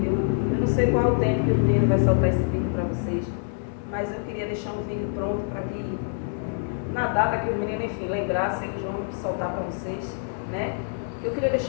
eu não sei qual o tempo que o menino vai soltar esse vídeo para vocês, mas eu queria deixar um vídeo pronto para que, na data que os meninos, enfim, lembrassem, eles vão soltar para vocês, né? Eu queria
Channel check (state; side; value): silent; right; digital silence